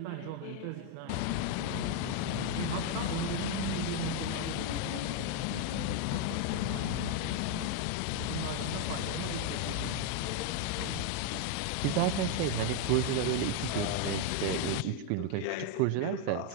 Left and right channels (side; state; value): both; different; correlation 0.01